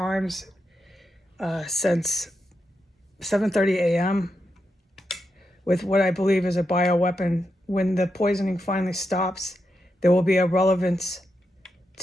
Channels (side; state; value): both; normal; correlation 0.85